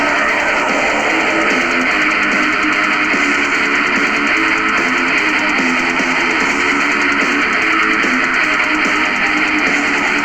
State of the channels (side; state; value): right; noise; rumble, 22 dB below the sound